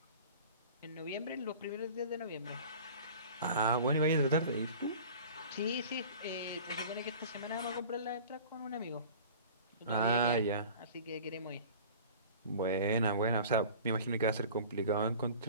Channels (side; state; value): both; inverted; correlation -0.42